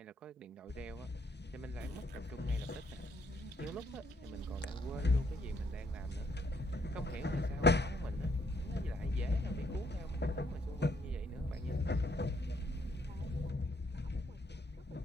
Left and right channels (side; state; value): both; normal; correlation 0.70